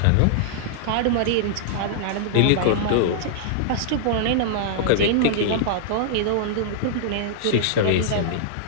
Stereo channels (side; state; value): both; different; correlation -0.01